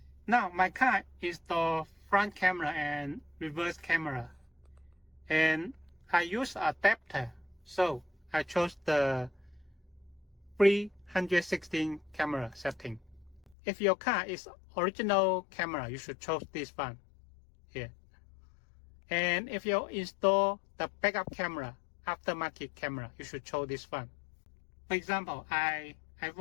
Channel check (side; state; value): right; drops out; at 13.6 s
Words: my car installed front camera and reverse camera, and I use adapter, so I chose the 316 camera setting. If your car is original camera, you should choose this one here. And if you install the backup camera, aftermarket camera, you should choose this one. For example, I